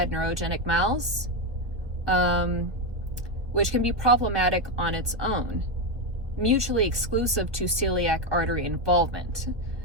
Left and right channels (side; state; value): left; late; 1.4 ms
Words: neurogenic MALS, which can be problematic on its own, mutually exclusive to celiac artery involvement.